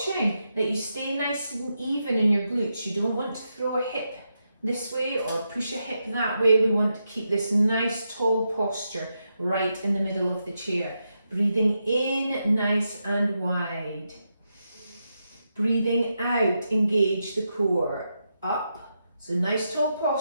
that you stay nice and even in your glutes. You don't want to throw a hip this way or push a hip that way. We want to keep this nice tall posture right in the middle of the chair. Breathing in nice and wide. Breathing out, engage the core. Up, so nice tall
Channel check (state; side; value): inverted; both; correlation -0.85